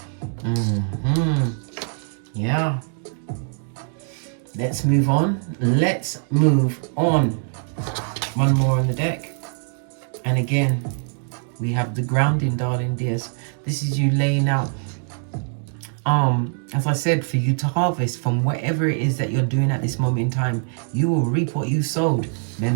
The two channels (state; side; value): silent; left; 61 dB below the other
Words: Yeah. Let's move on. Let's move on. One more on the deck. And again, we have the grounding, darling dears. This is you laying out, as I said, for you to harvest from whatever it is that you're doing at this moment in time. You will reap what you sowed.